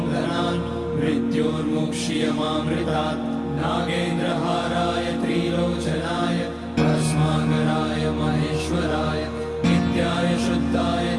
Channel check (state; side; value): identical; both; correlation 1.00